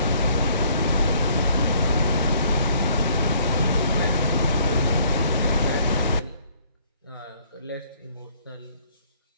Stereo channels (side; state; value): both; inverted; correlation -0.62